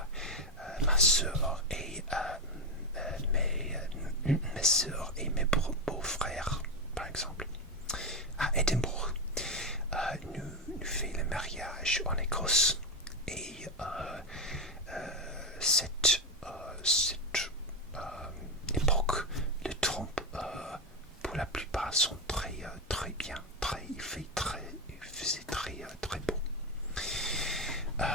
ma soeur et mes soeurs et mes beaux-frères, par exemple, à Édimbourg. Nous faisons le mariage en Écosse et cette époque de Trump pour la plupart sont très bien, il faisait très beau.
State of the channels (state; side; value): normal; both; correlation 0.10